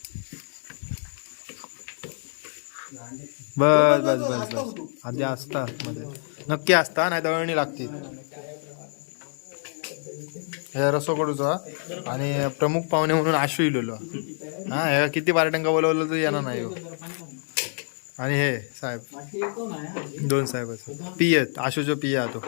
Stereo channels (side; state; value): right; silent; 61 dB below the other